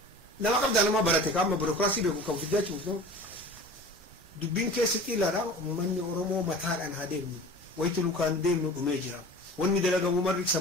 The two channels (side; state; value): both; normal; correlation 0.39